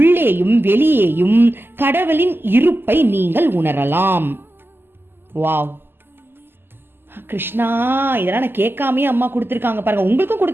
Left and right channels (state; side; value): late; left; 0.10 ms